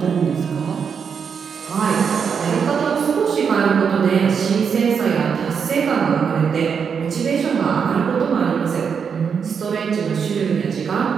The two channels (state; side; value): quieter; left; 6.6 dB